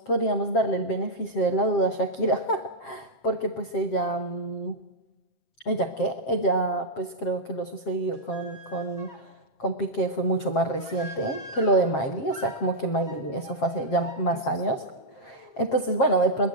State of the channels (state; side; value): late; right; 7.5 ms